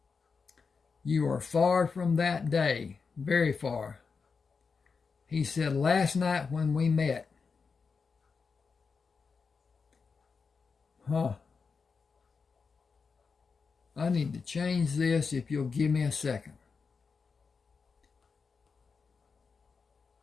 You are far from that day, very far. He said, last night when we met. I need to change this if you'll give me a second.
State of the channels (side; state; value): right; quieter; 5.1 dB